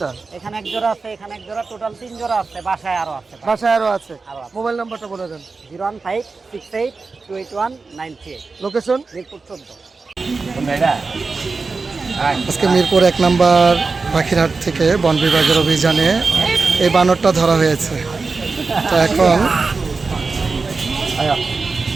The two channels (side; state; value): left; quieter; 4.2 dB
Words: এখানে এক জোড়া আছে, এখানে এক জোড়া, টোটাল 3 জোড়া আছে। বাসায় আরো আছে। বাসায় আরো আছে। আরো আছে। মোবাইল নাম্বারটা বলে দেন। 01568281938। লোকেশন? মিরপুর 14। আজকে মিরপুর 1 নম্বর পাখিরহাট থেকে বন বিভাগের অভিযানে এই বানরটা ধরা হয়েছে। তো এখন